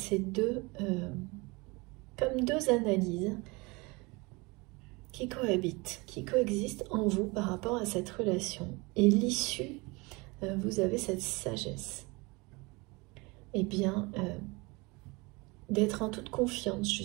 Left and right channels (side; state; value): left; quieter; 25.7 dB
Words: deux, comme deux analyses qui cohabitent, qui coexistent en vous par rapport à cette relation. Et l'issue, vous avez cette sagesse. Eh bien, d'être en toute confiance